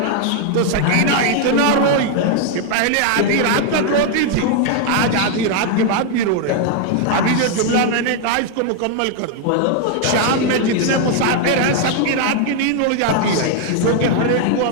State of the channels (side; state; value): both; different; correlation 0.00